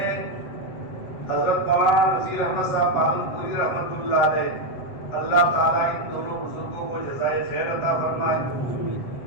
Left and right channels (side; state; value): right; late; 7.8 ms